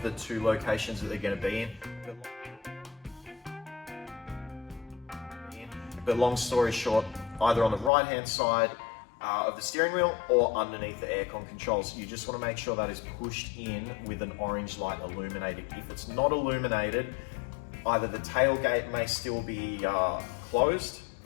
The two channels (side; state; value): right; drops out; at 7.9 s